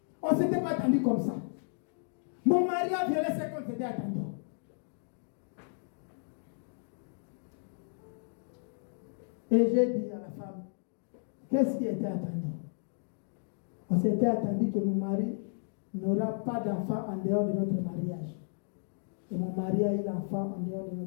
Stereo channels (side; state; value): right; silent; digital silence